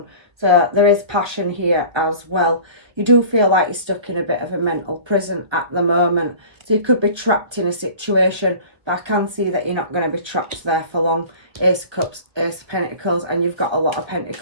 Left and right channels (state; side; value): late; left; 1.5 ms